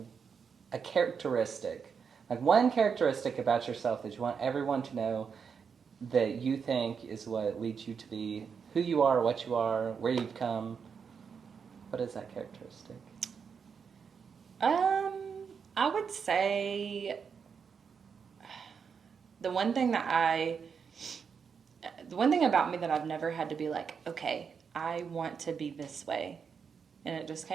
a characteristic, like one characteristic about yourself that you want everyone to know that you think is what leads you to be who you are, what you are, where you've come? What is that characteristic? I would say the one thing about me that I've never had to be like, okay, I want to be this way, and it just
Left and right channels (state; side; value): quieter; left; 6.3 dB